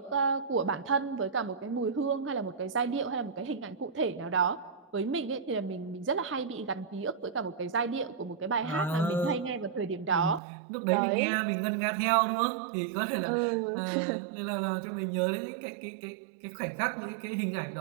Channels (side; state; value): left; drops out; at 10.4 s